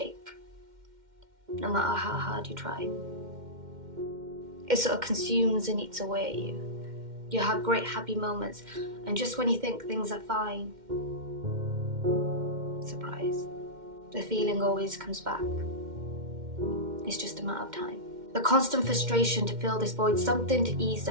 no matter how hard you try. It sort of consumes and eats away at you. You have great happy moments, and just when you think things are fine, surprise, the feeling always comes back. It's just a matter of time. The constant frustration to fill this void, something to ease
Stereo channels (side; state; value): left; late; 2.1 ms